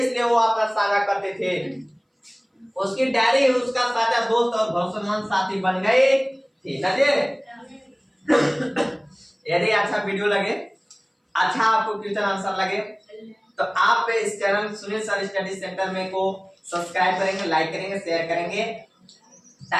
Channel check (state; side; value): identical; both; correlation 1.00